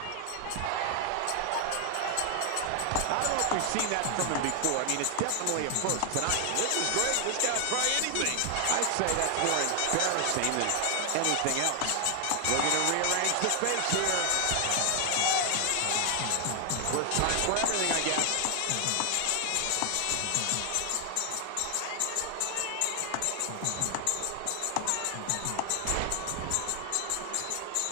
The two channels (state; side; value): different; both; correlation 0.00